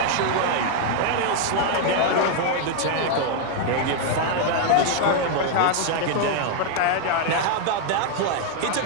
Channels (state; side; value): different; both; correlation 0.00